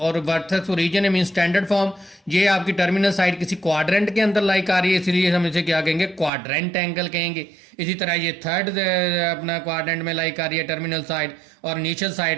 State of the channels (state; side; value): drops out; left; at 6.3 s